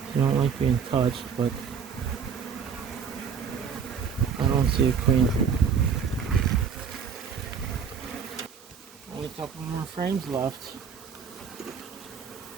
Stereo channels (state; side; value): quieter; left; 6.6 dB